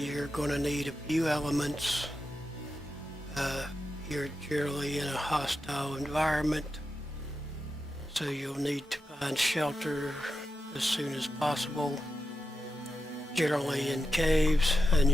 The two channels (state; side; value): normal; both; correlation 0.88